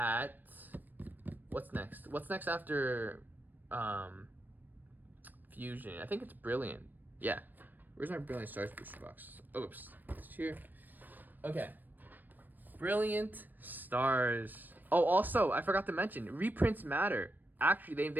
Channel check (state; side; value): late; left; 0.089 ms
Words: what's next. What's next after Fusion? I think it's Brilliant. Yeah. Where's my Brilliant Stars booster box? Oops. It's here. Okay. Brilliant Stars. Oh, also, I forgot to mention, reprints matter. Actually,